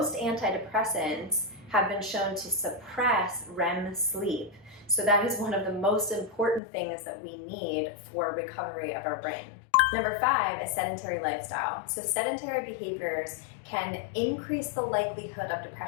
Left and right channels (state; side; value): drops out; right; at 6.6 s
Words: antidepressants have been shown to suppress REM sleep. So that is one of the most important things that we need for recovery of our brain. Number five is sedentary lifestyle. So sedentary behaviors can increase the likelihood of